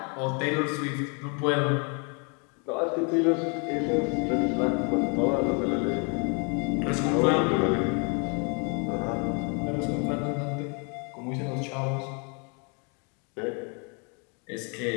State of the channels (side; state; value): right; quieter; 36.1 dB